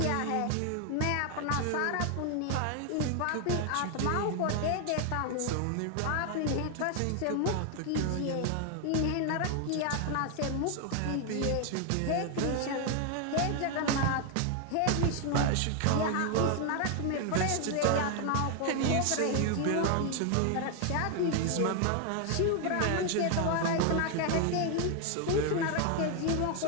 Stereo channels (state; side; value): different; both; correlation 0.01